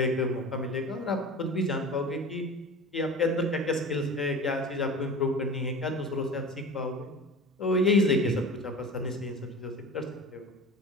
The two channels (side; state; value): both; normal; correlation 0.35